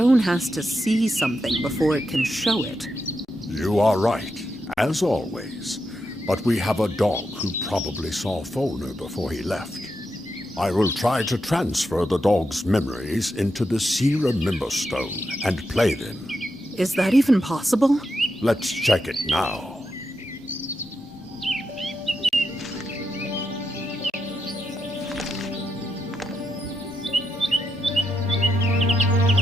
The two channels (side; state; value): both; normal; correlation 0.85